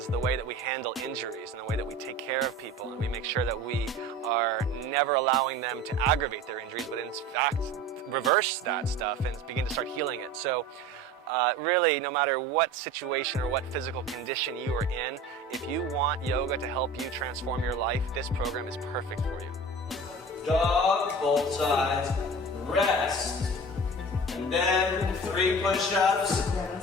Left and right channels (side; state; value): both; normal; correlation 0.37